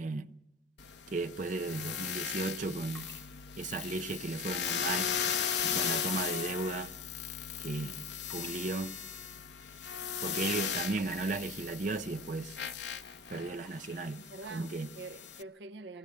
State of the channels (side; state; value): both; normal; correlation 0.34